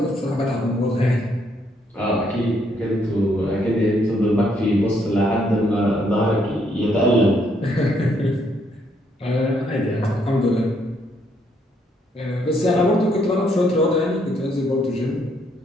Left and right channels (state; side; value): normal; both; correlation 0.72